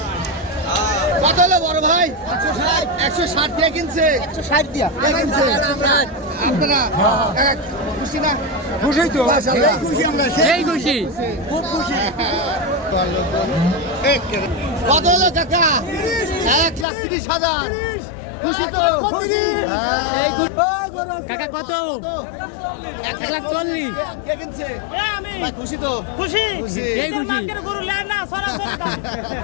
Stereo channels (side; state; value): right; drops out; at 16.9 s